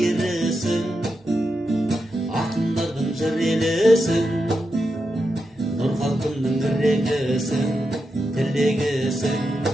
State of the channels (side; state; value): both; normal; correlation 0.87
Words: ақындардың жыр елісің, нұр халқымның ірегісің, тілегісің,